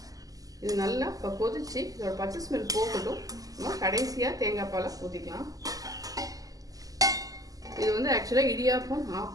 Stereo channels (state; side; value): late; left; 0.17 ms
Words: இது நல்லா இப்போ கொதிச்சு இதோட பச்சை ஸ்மெல் போகட்டும். நம்ம கடைசியாக தேங்காய் பாலை ஊற்றிக்கலாம். இது வந்து ஆக்சுவலாக இடியாப்பம்,